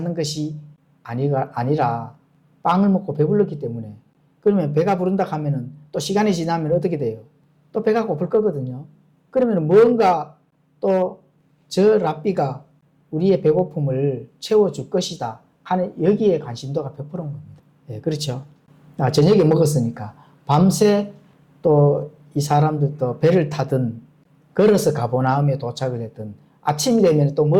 것이 아니라 빵을 먹고 배불렀기 때문에. 그러면 배가 부른다 하면은 또 시간이 지나면 어떻게 돼요? 또 배가 고플 거거든요. 그러면 뭔가 또 저 랍비가 우리의 배고픔을 채워줄 것이다 하는 여기에 관심도가 100%인 겁니다. 예, 그렇죠. 저녁에 먹었으니까 밤새 또 이 사람들도 배를 타든 걸어서 가버나움에 도착을 했든 아침이 되면 또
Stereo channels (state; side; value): identical; both; correlation 1.00